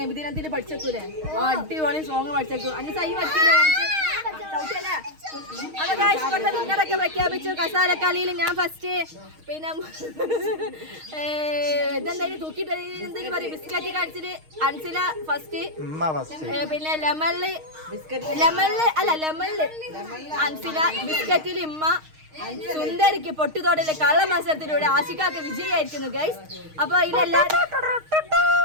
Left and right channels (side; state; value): left; late; 6.4 ms